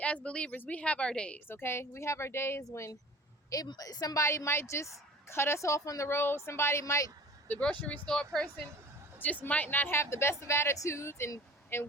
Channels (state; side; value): normal; both; correlation 0.44